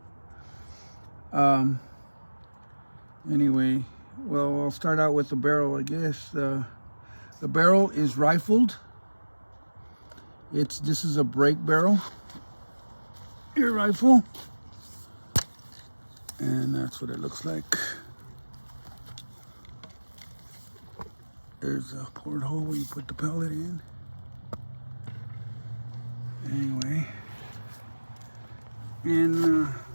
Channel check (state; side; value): inverted; both; correlation -1.00